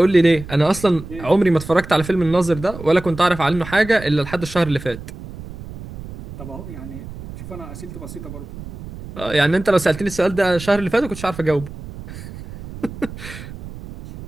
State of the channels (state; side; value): noise; right; rumble, 13 dB below the sound